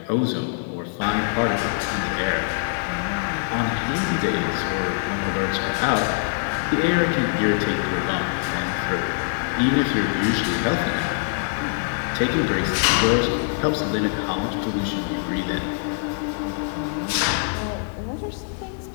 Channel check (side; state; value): right; silent; 63 dB below the other